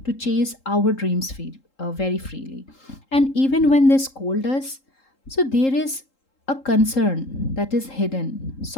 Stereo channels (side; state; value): right; late; 3.8 ms